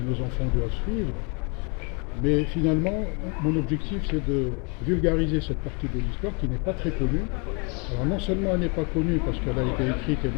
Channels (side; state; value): right; quieter; 33.7 dB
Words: enfants doivent suivre. Mais finalement, mon objectif, c'est de vulgariser cette partie de l'histoire qui n'est pas très connue. Alors non seulement elle n'est pas connue parce qu'elle a été écrite